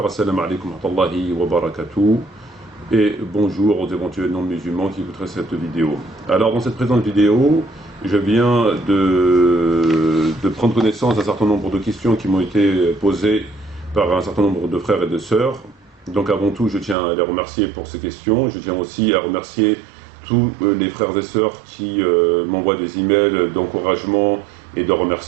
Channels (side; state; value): left; drops out; at 16.9 s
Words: assalamu alaikum wa rahmatullahi wa barakatuh et bonjour aux éventuels non-musulmans qui écouteraient cette vidéo. Alors dans cette présente vidéo, je viens de prendre connaissance d'un certain nombre de questions qui m'ont été posées par un certain nombre de frères et de sœurs. Donc avant tout, je tiens à les remercier pour ces questions. Je tiens aussi à remercier tous les frères et sœurs qui m'envoient des emails d'encouragement et de